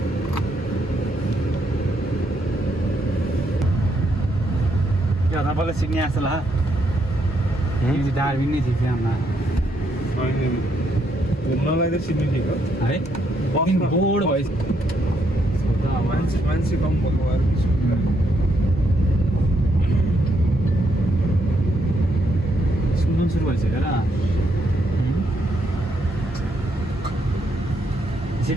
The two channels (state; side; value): normal; both; correlation 0.76